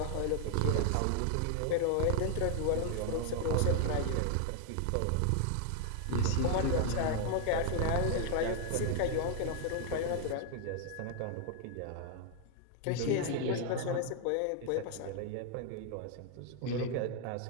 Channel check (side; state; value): both; different; correlation 0.00